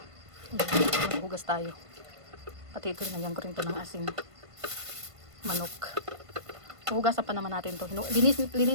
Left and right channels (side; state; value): left; late; 1.5 ms